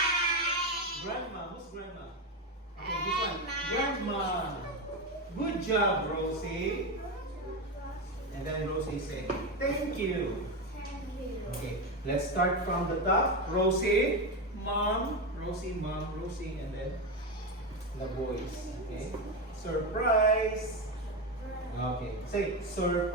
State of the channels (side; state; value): both; normal; correlation 0.13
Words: Grandma. Who's grandma? Okay, this one. Grandma. Good job, Rosie. And then Rosie say, thank you. Okay, let's start from the top. Rosie, mom, Rosie, and then the boys. Okay, surprise. Okay, say